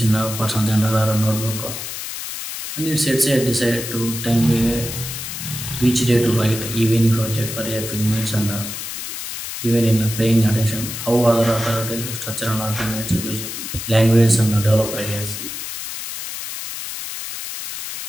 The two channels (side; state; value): left; noise; hiss, 7 dB below the sound